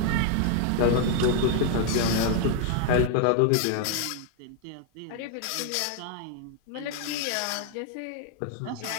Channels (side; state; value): both; different; correlation 0.00